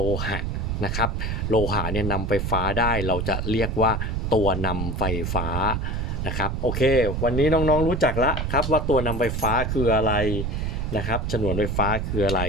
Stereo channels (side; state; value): right; noise; rumble, 2 dB below the sound